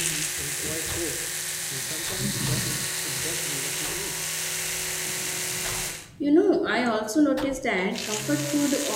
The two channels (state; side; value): identical; both; correlation 1.00